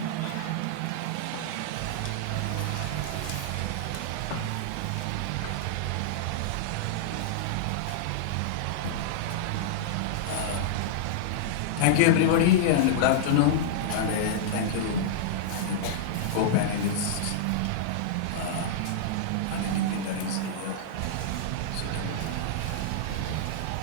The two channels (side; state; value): both; different; correlation -0.01